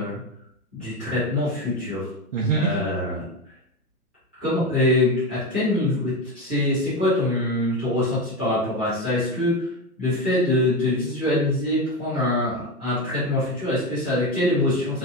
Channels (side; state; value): both; normal; correlation 0.17